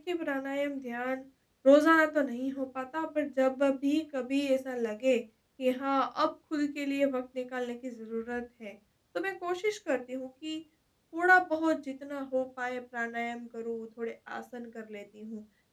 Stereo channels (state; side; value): identical; both; correlation 1.00